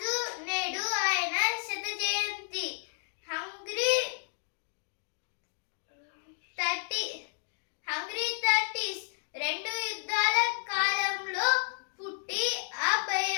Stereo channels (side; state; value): right; silent; digital silence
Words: నేడు ఆయన శత జయంతి. హంగ్రీ 30s రెండు యుద్ధాల కాలంలో పుట్టి ఆ